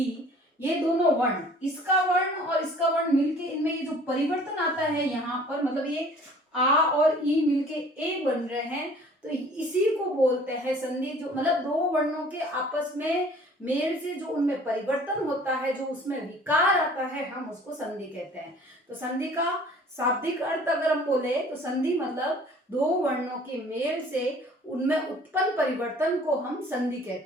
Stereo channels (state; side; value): normal; both; correlation 0.51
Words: ये दोनों वर्ण, इसका वर्ण और इसका वर्ण मिलके इनमें ये जो परिवर्तन आता है यहाँ पर, मतलब ये आ और ई मिलके ए बन रहे हैं, तो इसी को बोलते हैं संधि। जो मतलब दो वर्णों के आपस में मेल से जो उनमें परिवर्तन होता है, जो उसमें विकार आता है, हम उसको संधि कहते हैं। तो संधि का शाब्दिक अर्थ अगर हम बोले तो संधि मतलब दो वर्णों के मेल से उनमें उत्पन्न परिवर्तन को हम संधि